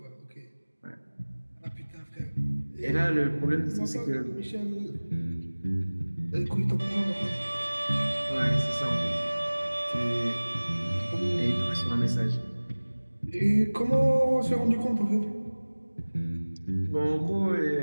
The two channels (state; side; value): inverted; both; correlation -1.00